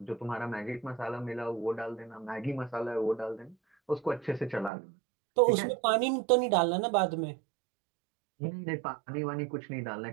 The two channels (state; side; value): drops out; left; at 4.7 s